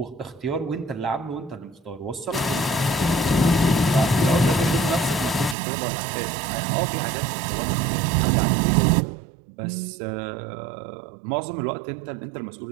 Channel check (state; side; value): drops out; left; at 5.6 s